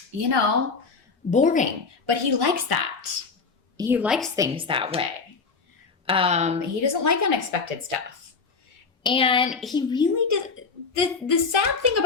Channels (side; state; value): right; quieter; 4.8 dB